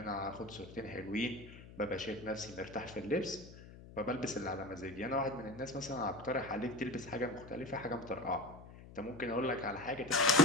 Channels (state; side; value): noise; left; hum, 17 dB below the sound